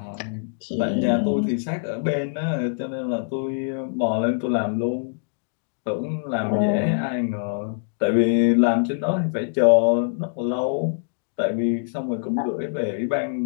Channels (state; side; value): silent; right; digital silence